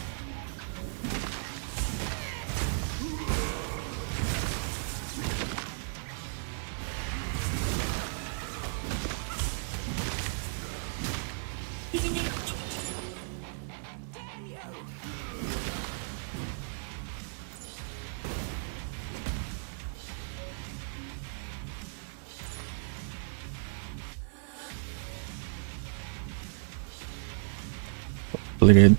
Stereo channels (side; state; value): left; silent; 56 dB below the other